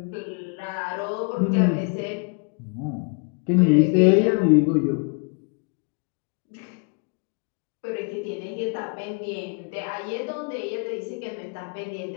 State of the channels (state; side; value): quieter; right; 37.0 dB